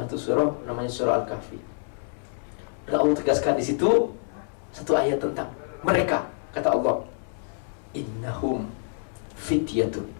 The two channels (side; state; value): right; silent; 60 dB below the other